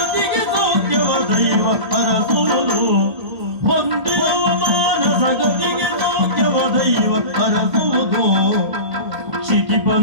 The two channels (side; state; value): left; late; 1.8 ms